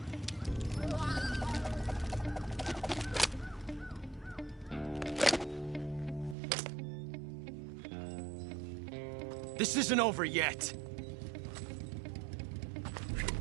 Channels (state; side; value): drops out; left; at 6.4 s